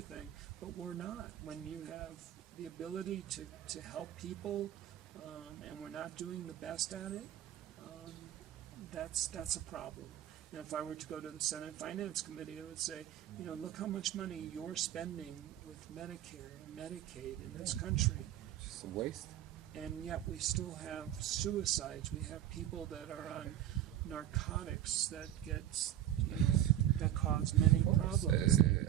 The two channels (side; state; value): left; quieter; 11.9 dB